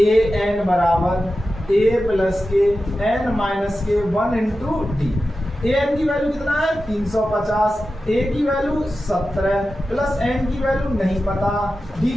एन बराबर ए प्लस के एन माइनस के 1 इंटू डी। ए एन की वैल्यू कितना है? 350, ए की वैल्यू 17 प्लस एन की वैल्यू नहीं पता, डी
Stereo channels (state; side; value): normal; both; correlation 0.93